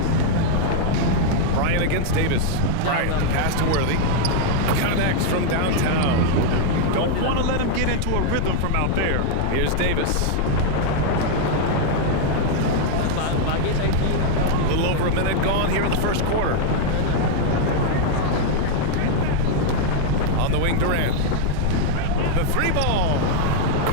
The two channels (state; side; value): different; both; correlation 0.00